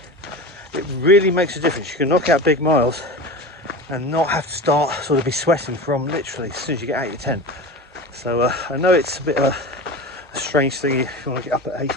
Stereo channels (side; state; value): both; normal; correlation 0.30